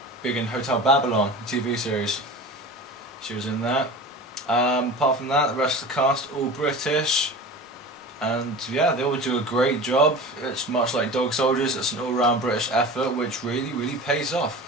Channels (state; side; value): normal; both; correlation 0.35